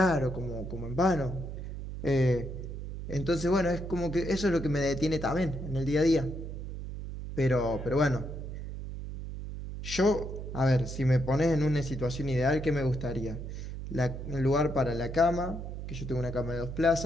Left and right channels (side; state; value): right; noise; hum, 7 dB below the sound